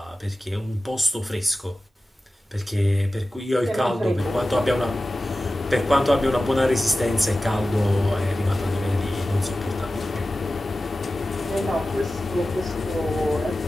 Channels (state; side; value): normal; both; correlation 0.95